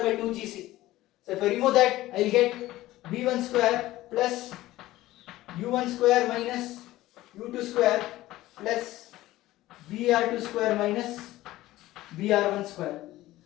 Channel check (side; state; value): right; quieter; 16.4 dB